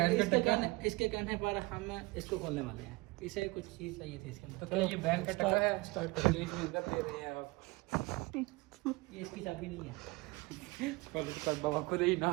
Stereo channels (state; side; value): quieter; left; 23.7 dB